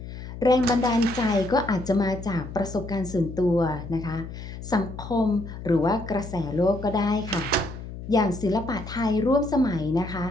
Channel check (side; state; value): left; noise; hum, 11 dB below the sound